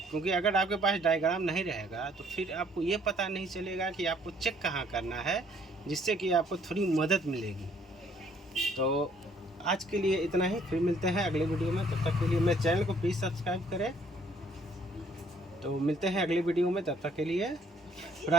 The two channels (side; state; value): both; normal; correlation 0.62